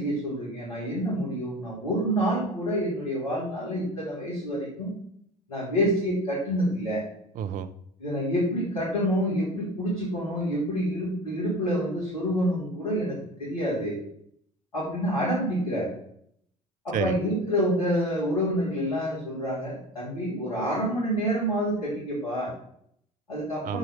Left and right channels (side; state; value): both; normal; correlation 0.35